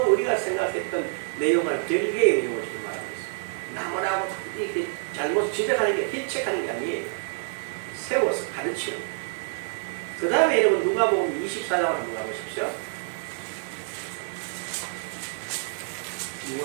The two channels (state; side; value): silent; left; digital silence